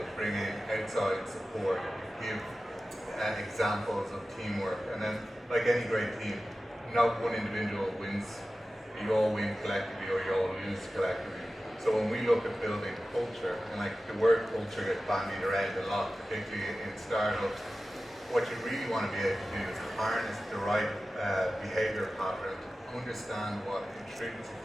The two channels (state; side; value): normal; both; correlation 0.95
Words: bring in outside support, give examples of teamwork, and then, like any great team, not one individual wins. You all win collectively or you all lose collectively. So when we look at building culture, and like the word culture gets bandied around a lot, particularly in startups, what you really want to be able to do is harness the right behavior pattern, understand what